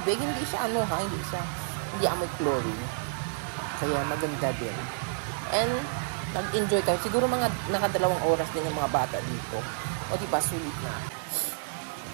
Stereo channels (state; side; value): silent; left; 58 dB below the other